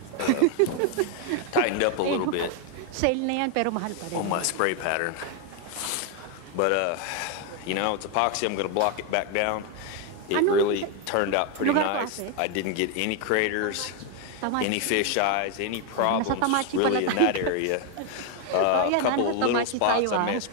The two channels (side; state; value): both; different; correlation 0.01